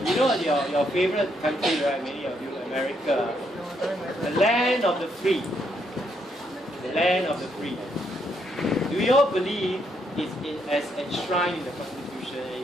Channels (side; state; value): both; normal; correlation 0.75